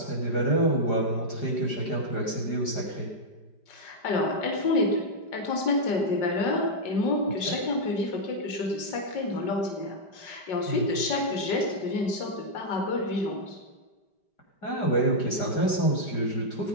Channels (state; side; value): late; right; 5.0 ms